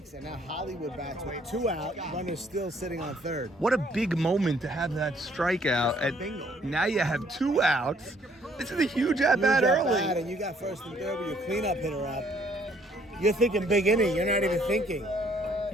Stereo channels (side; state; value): both; normal; correlation 0.63